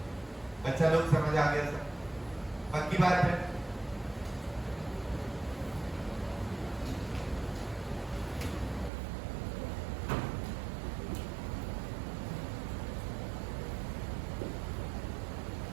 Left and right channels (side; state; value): left; drops out; at 8.9 s